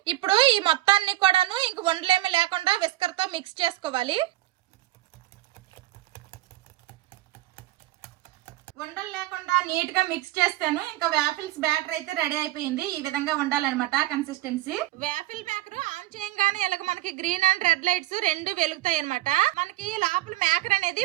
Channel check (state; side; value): quieter; left; 16.5 dB